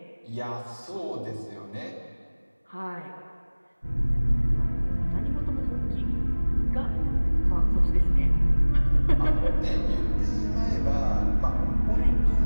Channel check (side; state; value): both; inverted; correlation -1.00